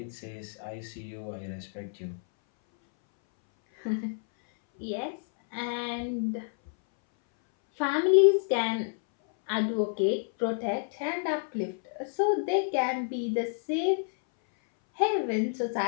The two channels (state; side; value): silent; right; 58 dB below the other